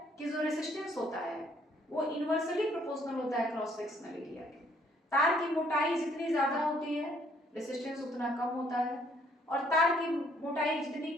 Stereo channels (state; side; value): normal; both; correlation 0.65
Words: कि जो रेसिस्टेंस होता है वो इनवर्सली प्रोपोर्शनल होता है क्रॉस सेक्शनल एरिया के। तार की मोटाई जितनी ज्यादा होती है रेसिस्टेंस उतना कम होता है, और तार की मोटाई जितनी